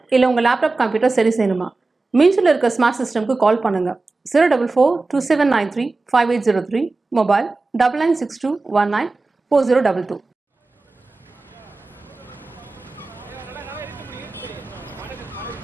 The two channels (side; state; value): left; quieter; 3.5 dB